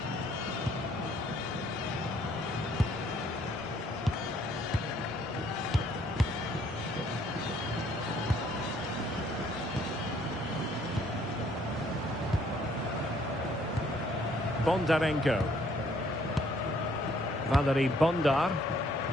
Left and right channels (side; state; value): both; normal; correlation 0.64